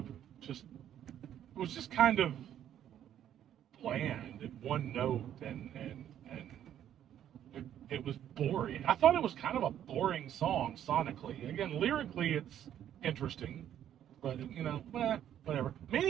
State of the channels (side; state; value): left; quieter; 10.6 dB